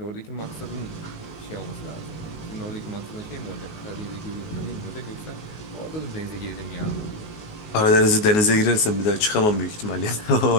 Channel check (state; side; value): late; right; 19 ms